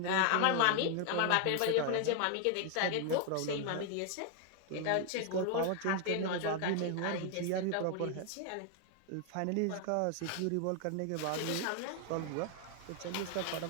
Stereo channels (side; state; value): both; different; correlation 0.00